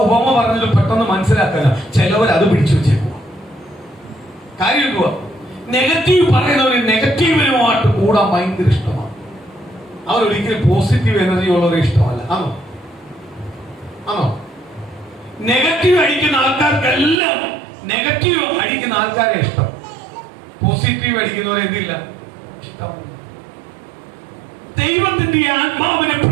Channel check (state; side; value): drops out; left; at 17.2 s